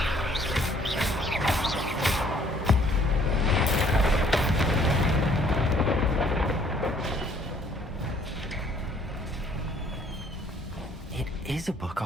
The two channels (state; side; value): normal; both; correlation 0.61